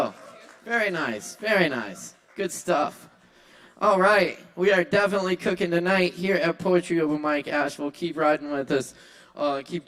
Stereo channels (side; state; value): both; identical; correlation 1.00